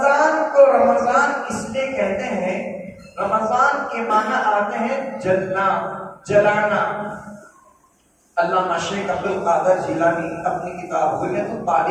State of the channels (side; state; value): both; identical; correlation 1.00